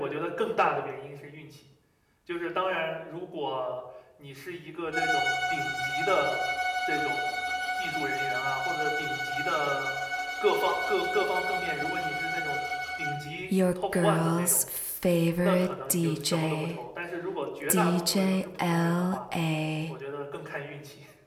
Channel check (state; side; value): identical; both; correlation 1.00